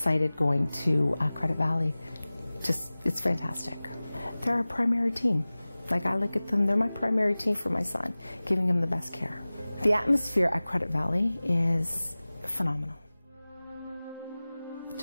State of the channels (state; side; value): inverted; both; correlation -0.98